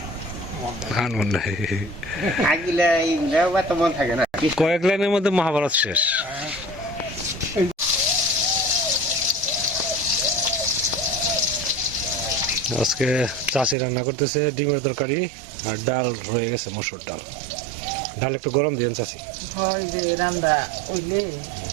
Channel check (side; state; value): left; drops out; at 13.8 s